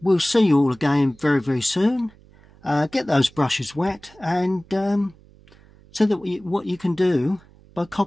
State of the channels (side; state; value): right; noise; hum, 26 dB below the sound